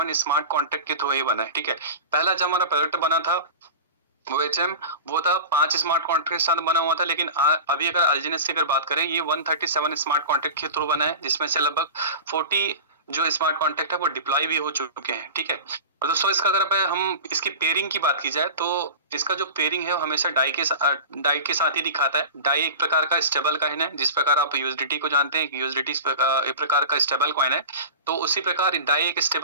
स्मार्ट कॉन्ट्रैक्ट के थ्रू ही बना है, ठीक है। पहला जब हमारा प्रोजेक्ट बना था वो था 5 स्मार्ट कॉन्ट्रैक्ट के साथ बना हुआ था, लेकिन अभी अगर एलजीएनएस की अगर बात करें ये 137 स्मार्ट कॉन्ट्रैक्ट के थ्रू बना है, जिसमें से लगभग 40 जो स्मार्ट कॉन्ट्रैक्ट है वो डिप्लॉय भी हो चुके हैं, ठीक है। और दोस्तों इसका अगर हम इसकी पेयरिंग की बात की जाए तो इसका जो पेयरिंग है वो हमेशा डाई के साथ ही दिखाता है। डाई एक प्रकार का स्टेबल कॉइन है, जिस प्रकार आप यूएसडीटी को जानते हैं, यूएसडीटी एक प्रकार का स्टेबल कॉइन है, तो उसी प्रकार डाई एक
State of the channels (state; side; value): inverted; both; correlation -0.32